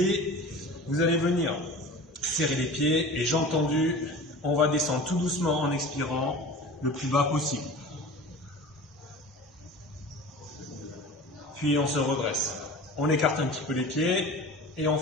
Vous allez venir serrer les pieds et jambes tendues. On va descendre tout doucement en expirant le plus bas possible. Puis on se redresse. On écarte un petit peu les pieds et on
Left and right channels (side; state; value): both; normal; correlation 0.38